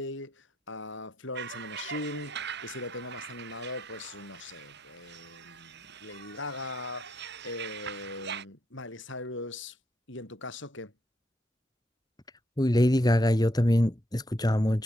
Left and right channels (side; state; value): both; normal; correlation 0.78